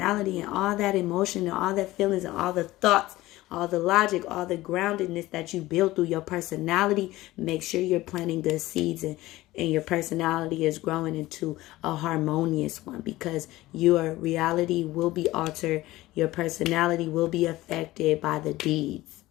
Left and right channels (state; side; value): quieter; right; 17.6 dB